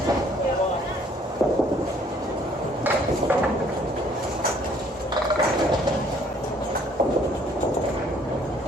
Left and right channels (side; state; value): both; normal; correlation 0.61